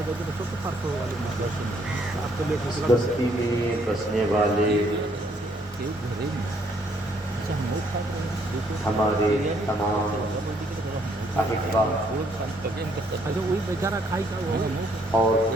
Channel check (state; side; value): normal; both; correlation 0.68